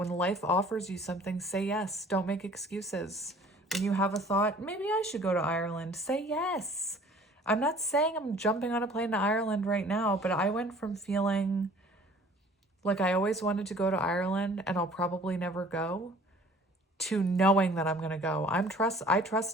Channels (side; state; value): both; normal; correlation 0.50